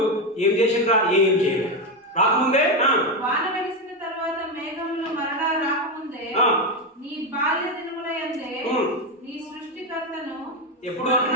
ఏం చేసిండ్రా? ఏం చేయలేదు. రాకముందే వాన వెలిసిన తర్వాత మేఘములు మరలా రాకముందే నీ బాల్య దినములయందే నీ సృష్టికర్తను ఎప్పుడు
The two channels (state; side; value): normal; both; correlation 0.10